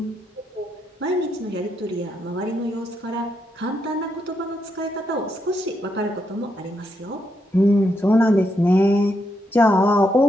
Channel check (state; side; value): normal; both; correlation 0.80